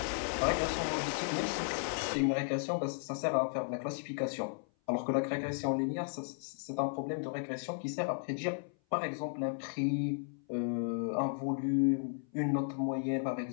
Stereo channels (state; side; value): silent; right; 55 dB below the other